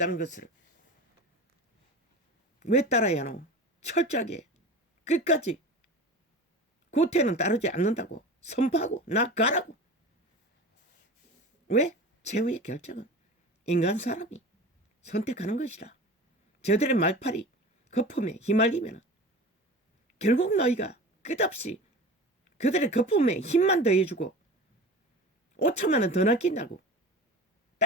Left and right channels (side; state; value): both; normal; correlation 0.34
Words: 것을 왜 따라야 하노? 철저하게 끝까지 구태는 따르지 않는다고 선포하고 나가라고. 왜? 최후의 결정은 인간 사람이 선택하는 것이라. 저들의 말팔이 거품에 휘말리면 결국 너희가 끝없이 그들의 거품에 힘만 더해주고 5천만 원 더 낚인다고